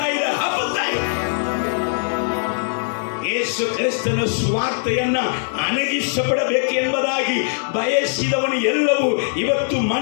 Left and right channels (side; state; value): right; silent; digital silence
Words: ಯೇಸು ಕ್ರಿಸ್ತನ ಸುವಾರ್ತೆಯನ್ನ ಅಣಗಿಸಪಡಬೇಕು ಎಂಬುದಾಗಿ ಬಯಸಿದವನು ಎಲ್ಲವೂ ಇವತ್ತು